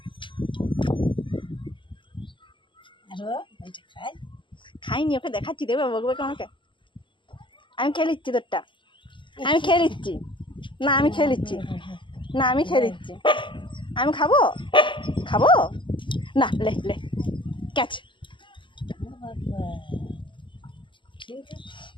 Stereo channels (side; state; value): right; late; 0.24 ms